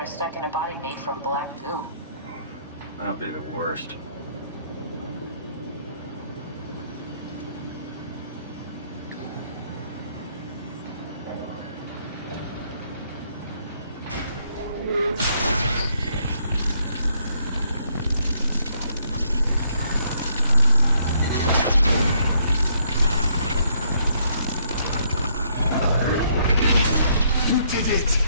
stuck in a body made from black goo. That'd be the worst. You did it!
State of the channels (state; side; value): inverted; both; correlation -0.70